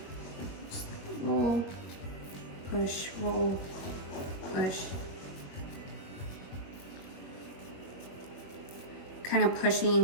Just roll, push, roll, push. Kind of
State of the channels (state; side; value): late; right; 21 ms